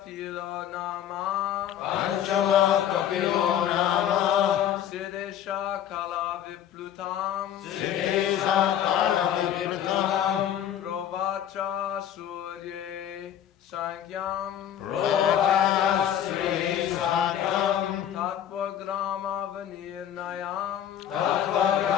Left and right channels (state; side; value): quieter; right; 10.3 dB